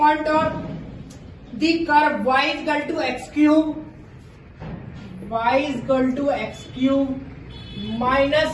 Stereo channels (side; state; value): both; identical; correlation 1.00